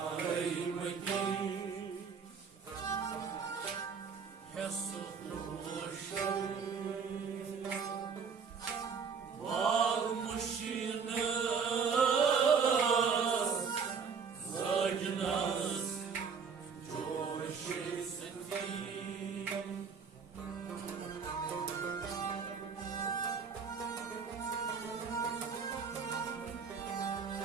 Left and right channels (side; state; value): left; quieter; 6.0 dB